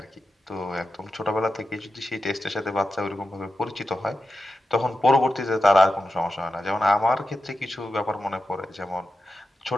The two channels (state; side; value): normal; both; correlation 0.91